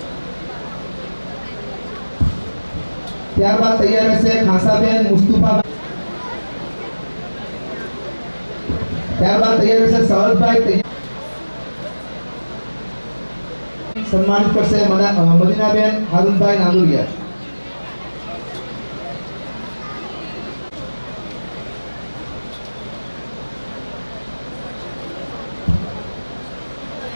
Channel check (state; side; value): inverted; both; correlation -1.00